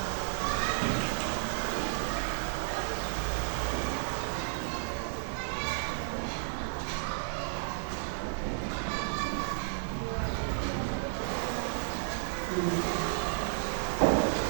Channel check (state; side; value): silent; left; digital silence